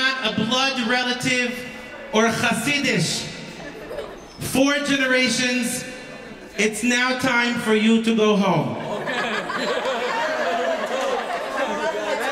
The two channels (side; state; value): both; identical; correlation 1.00